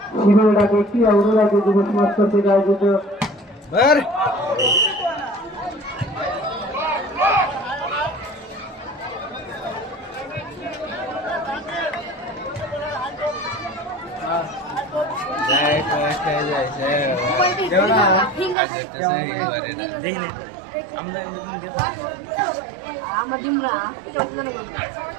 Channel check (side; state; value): left; drops out; at 18.6 s